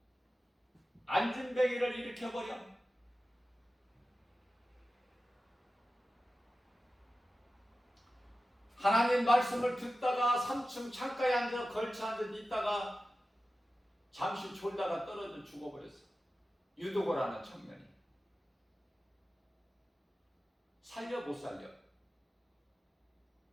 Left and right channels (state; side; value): normal; both; correlation 0.94